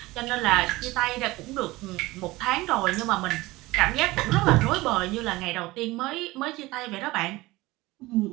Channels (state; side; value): quieter; left; 20.0 dB